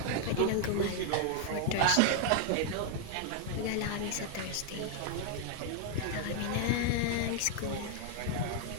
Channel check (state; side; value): different; both; correlation 0.00